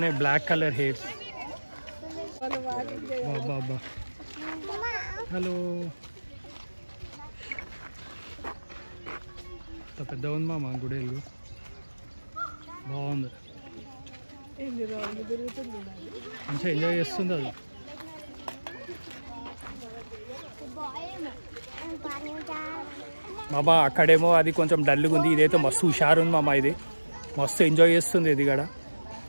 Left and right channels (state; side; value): inverted; both; correlation -1.00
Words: బ్లాక్ కలర్ హెయిర్స్. బాబా హలో, ఇంత పెద్ద ఉంది మామ గుడేలు. బాగుంది, మంచిగా ఎంజాయ్ చేస్తుంది అది. మామ అక్కడేమో అది కొంచెం డల్గా ఉంది, ఇదైతే మస్తు హుషారు ఉంది మామ. ఇది మస్తు ఎంజాయ్ చేస్తుంది. ఇది కూడా